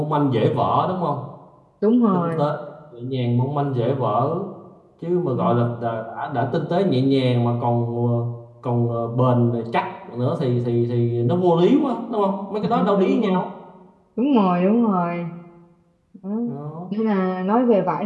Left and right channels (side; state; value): both; identical; correlation 1.00